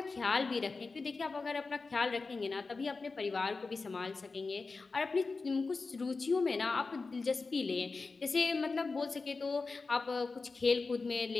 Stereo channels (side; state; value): right; quieter; 4.1 dB